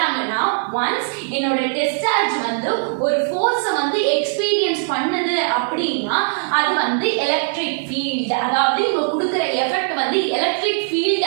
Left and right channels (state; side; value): silent; left; digital silence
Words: ஒன்ஸ் என்னோட டெஸ்ட் சார்ஜ் வந்து ஒரு ஃபோர்ஸை வந்து எக்ஸ்பீரியன்ஸ் பண்ணுது அப்படின்னா அது வந்து எலக்ட்ரிக் ஃபீல்ட். அதாவது இவங்க கொடுக்கிற எஃபெக்ட் வந்து எலக்ட்ரிக்